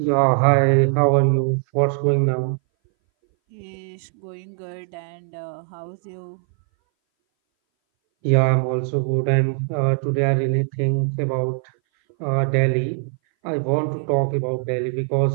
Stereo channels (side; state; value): left; silent; 60 dB below the other